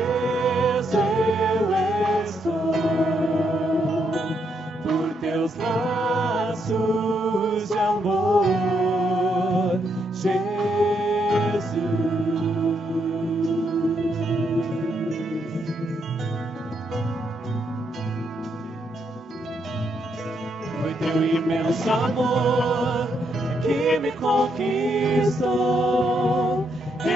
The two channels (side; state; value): both; normal; correlation 0.77